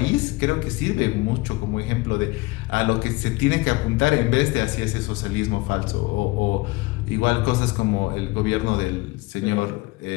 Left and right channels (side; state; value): right; quieter; 22.5 dB